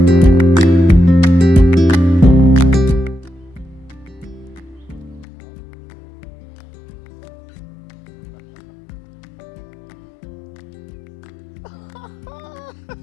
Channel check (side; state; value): right; drops out; at 5.2 s